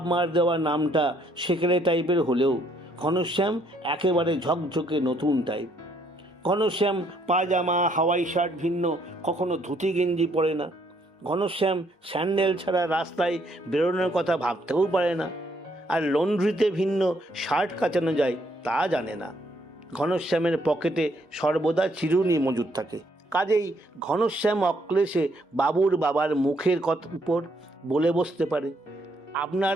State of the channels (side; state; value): both; normal; correlation 0.69